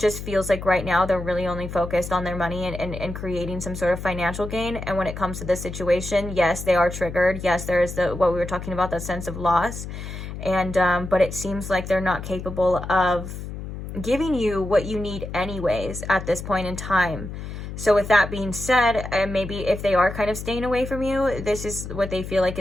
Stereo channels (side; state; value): left; noise; hum, 9 dB below the sound